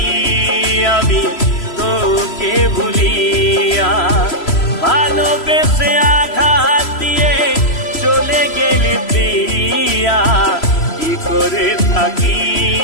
আমি তোকে ভুলিয়া, ভালোবেসে আঘাত দিয়ে চলে গেলি প্রিয়া। কি করে থাকি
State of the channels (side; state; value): right; late; 3.0 ms